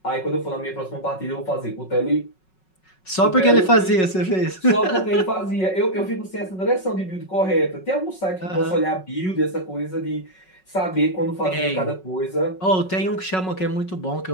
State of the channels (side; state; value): right; late; 5.4 ms